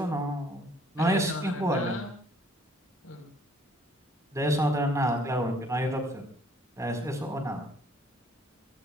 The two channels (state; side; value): normal; both; correlation 0.61